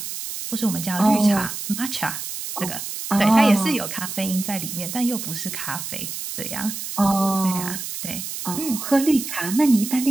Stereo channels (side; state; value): right; noise; hiss, 7 dB below the sound